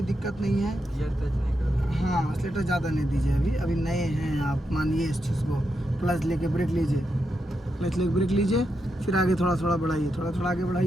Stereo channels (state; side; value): normal; both; correlation 0.85